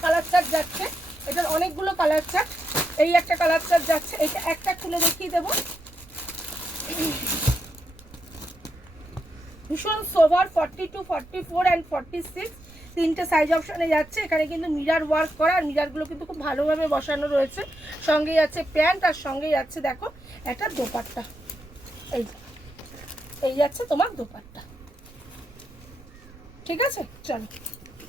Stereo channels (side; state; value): right; noise; rumble, 22 dB below the sound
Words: কালার চার্ট যাচ্ছে, এটার অনেকগুলো কালার চার্ট। এই একটা কালার চার্ট যাচ্ছে, এটা একটা খুলে দেখিয়ে দেবো, ভীষণ সোভার 42, 44 অ্যান্ড 46, 3টে সাইজ অপশানে যাচ্ছে। এখানে কিন্তু মিরার ওয়ার্ক করা, আর মিরারগুলো কিন্তু খুব ভালোভাবে বসানো রয়েছে। সঙ্গে যাচ্ছে প্যান্ট, আর সঙ্গে যাচ্ছে দেখো একটা দোপাট্টা, এই যাচ্ছে তোমার দোপাট্টা। ঠিক আছে, চলো